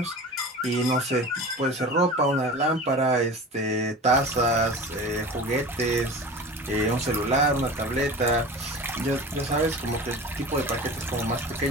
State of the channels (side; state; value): both; normal; correlation 0.35